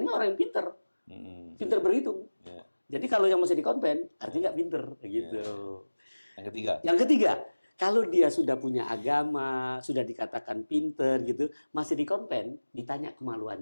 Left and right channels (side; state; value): both; inverted; correlation -1.00